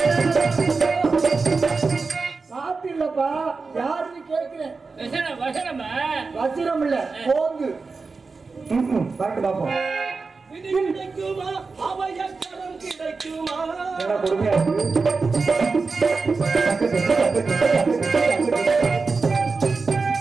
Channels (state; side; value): quieter; left; 4.3 dB